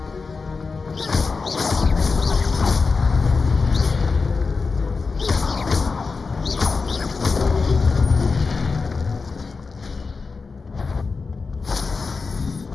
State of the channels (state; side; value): quieter; right; 4.5 dB